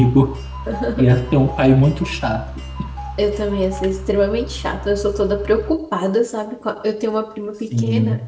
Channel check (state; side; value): identical; both; correlation 1.00